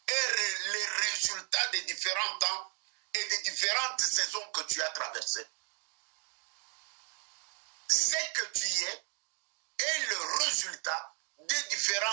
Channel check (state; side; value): quieter; left; 39.3 dB